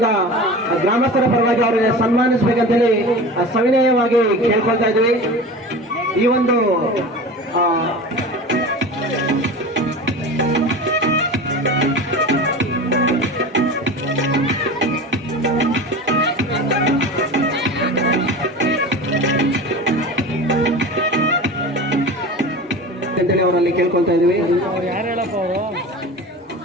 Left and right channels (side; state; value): both; normal; correlation 0.33